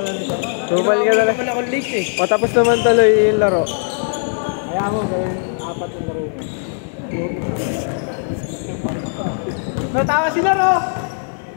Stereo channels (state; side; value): silent; right; 60 dB below the other